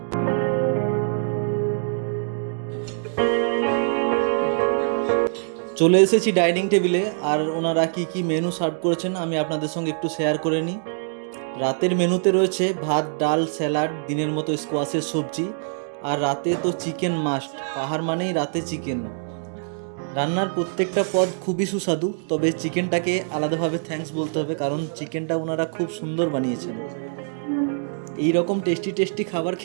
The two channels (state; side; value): silent; left; digital silence